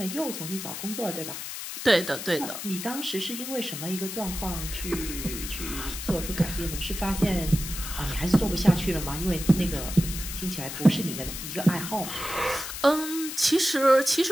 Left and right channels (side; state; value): left; noise; hiss, 7 dB below the sound